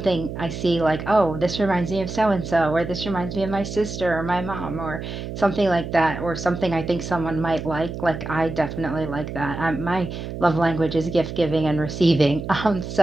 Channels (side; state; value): right; noise; hum, 7 dB below the sound